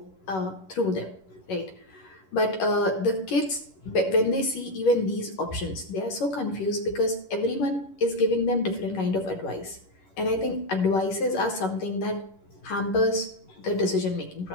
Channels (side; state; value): right; late; 11 ms